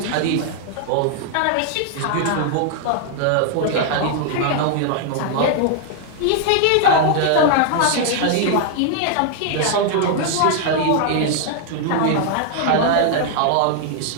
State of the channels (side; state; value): both; different; correlation 0.00